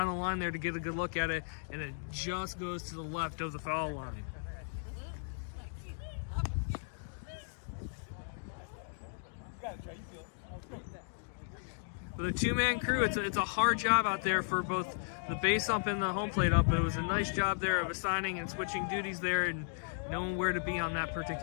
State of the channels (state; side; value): silent; right; digital silence